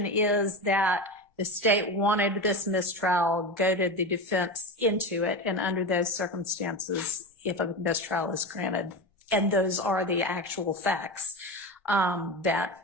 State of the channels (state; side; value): normal; both; correlation 0.23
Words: is that the state wanted this mistrial, goaded the defense into it, and under those circumstances, if a mistrial is granted, and those are the actual facts, that